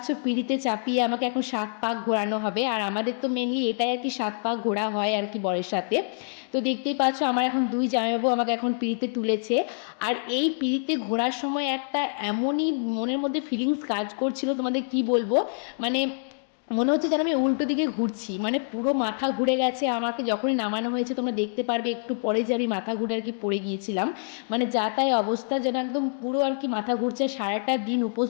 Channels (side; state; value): right; silent; digital silence